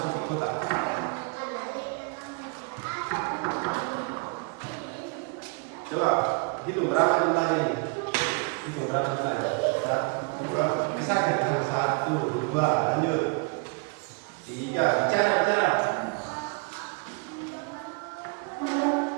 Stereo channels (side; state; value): left; quieter; 32.5 dB